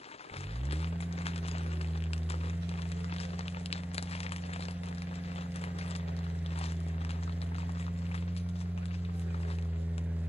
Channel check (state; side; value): normal; both; correlation 0.93